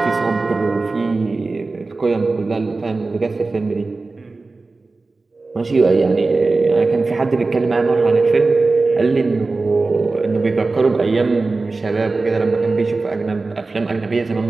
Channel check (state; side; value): quieter; left; 3.6 dB